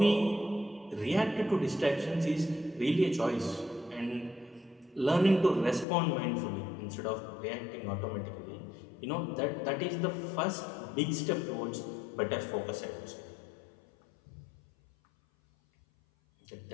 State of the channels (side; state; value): right; drops out; at 5.9 s